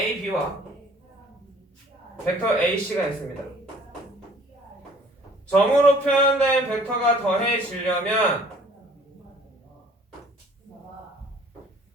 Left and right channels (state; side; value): normal; both; correlation 0.55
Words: 벡터 AC가 있습니다. 점으로 표현된 벡터가 더해지려면